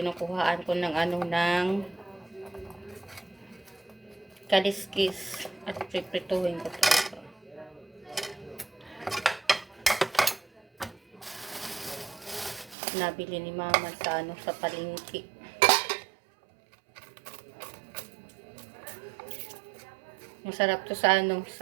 ko ng ng kaliskis at priprituhin ko ito. Nabili ni mama sa palengke. Masarap to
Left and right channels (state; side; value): drops out; left; at 12.8 s